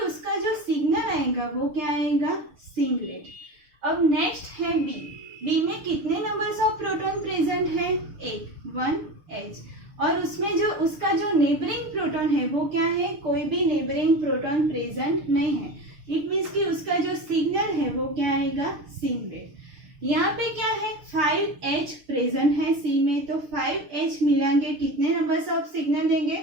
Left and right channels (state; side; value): late; left; 6.6 ms